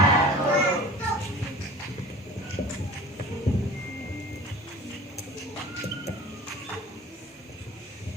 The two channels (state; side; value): normal; both; correlation 0.42